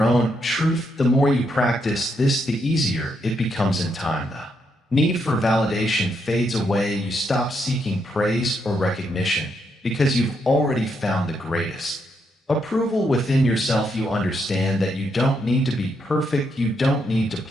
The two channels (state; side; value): normal; both; correlation 0.78